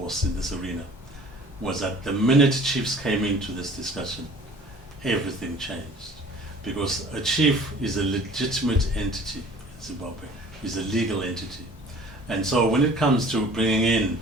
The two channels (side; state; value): both; normal; correlation 0.48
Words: in this arena was that the minute chiefs came into this discussion, everything changed. Because a chief is a legitimate entity in Zimbabwe, is a legal entity. And so when it comes to bringing in